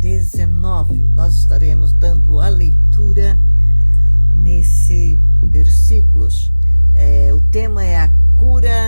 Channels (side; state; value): both; inverted; correlation -1.00